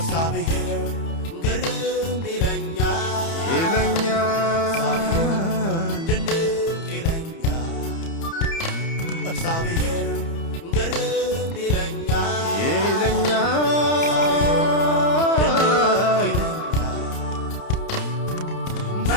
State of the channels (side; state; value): right; late; 30 ms